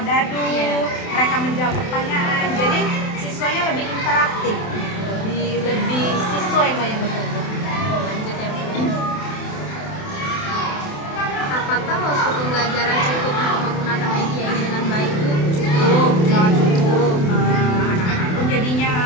dadu, mereka menjawab pertanyaan. Jadi siswanya lebih interaktif, lebih siswa yang banyak bekerja. Lanjut ya, Bu. Apakah waktu pembelajaran cukup untuk menggunakan media ini dengan baik, Bu? Cukup, sangat cukup. Anak-anak pun jadinya,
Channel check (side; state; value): right; late; 28 ms